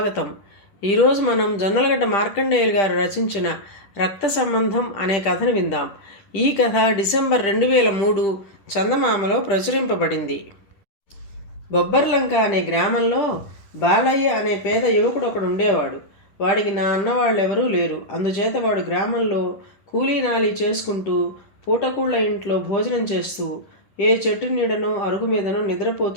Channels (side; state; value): right; late; 11 ms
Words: ఈరోజు మనం జొన్నలగడ్డ మార్కండేయులు గారు రచించిన రక్త సంబంధం అనే కథను విందాం. ఈ కథ డిసెంబర్ 2003 చందమామలో ప్రచురింపబడింది. బొబ్బర్లంక అనే గ్రామంలో బాలయ్య అనే పేద యువకుడు ఒకడు ఉండేవాడు. వాడికి నా అన్నవాళ్ళెవరూ లేరు. అందుచేత వాడు గ్రామంలో కూలీనాలి చేసుకుంటూ పూటకూళ్ళ ఇంట్లో భోజనం చేస్తూ ఏ చెట్టు నీడనో అరుగు మీదనో